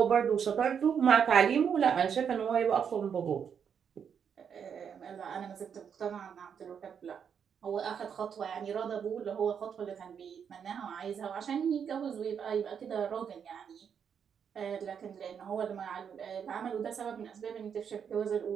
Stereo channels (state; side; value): quieter; left; 7.5 dB